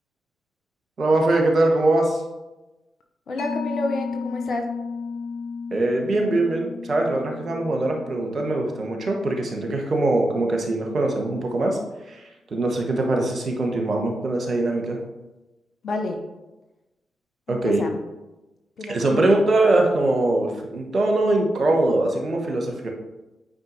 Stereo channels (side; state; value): both; normal; correlation 0.88